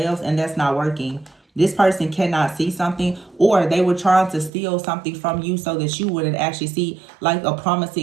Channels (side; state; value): left; drops out; at 4.5 s